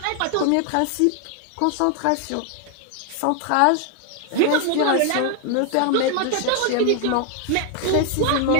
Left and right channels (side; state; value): both; different; correlation 0.00